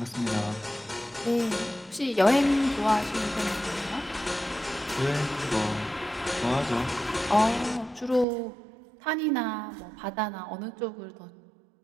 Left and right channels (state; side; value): drops out; left; at 8.2 s